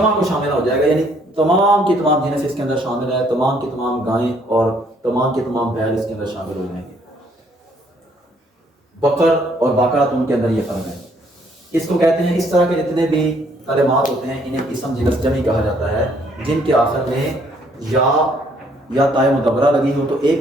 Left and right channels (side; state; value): both; normal; correlation 0.65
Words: کو شامل ہو جائے گا، یعنی تمام کی تمام جنس اس کے اندر شامل ہے، تمام کی تمام گائیں اور تمام کے تمام بیل اس کے اندر شامل ہو جائیں گے۔ بقر اور بقرۃ ان کے اندر یہ فرق ہے۔ اس کو کہتے ہیں، اس طرح کے جتنے بھی کلمات ہوتے ہیں انہیں اسم جنس جمع کہا جاتا ہے، جن کے آخر میں یا تائے مدبرہ لگی ہو تو ایک